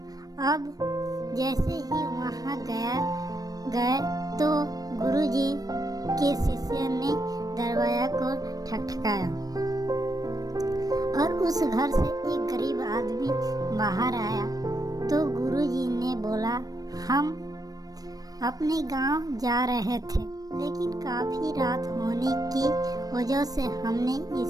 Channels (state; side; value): late; left; 0.18 ms